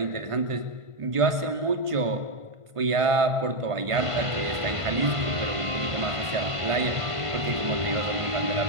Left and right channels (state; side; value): late; left; 1.5 ms